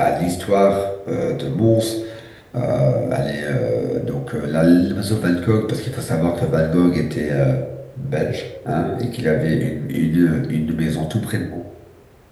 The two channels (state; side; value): identical; both; correlation 1.00